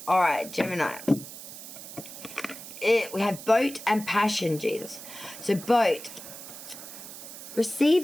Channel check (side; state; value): right; noise; hiss, 13 dB below the sound